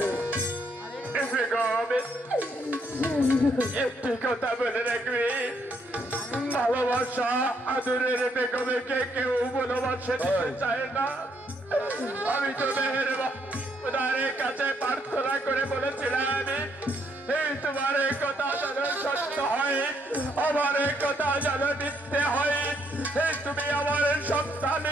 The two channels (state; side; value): normal; both; correlation 0.73